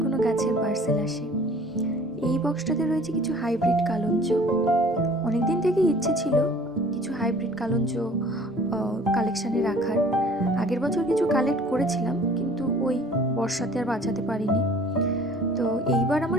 কোনো গাছের পার্সেল আসে। এই বক্সটাতে রয়েছে কিছু হাইব্রিড কালঞ্চ। অনেক দিন থেকেই ইচ্ছে ছিল কিছু হাইব্রিড কালঞ্চ কালেকশানে রাখার। আগের বছর কিছু কালেক্ট করেছিলাম, কিন্তু ওই বর্ষাতে আর বাঁচাতে পারিনি। তো এইবার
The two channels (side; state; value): both; normal; correlation 0.51